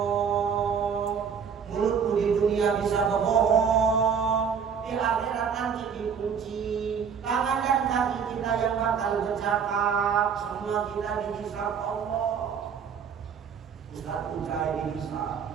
Mulutmu di dunia bisa berbohong, di akhirat nanti dikunci. Tangan dan kaki kita yang bakal bercakap, semua kita dihisab Allah. Ustaz Ujai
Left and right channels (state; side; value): quieter; left; 6.8 dB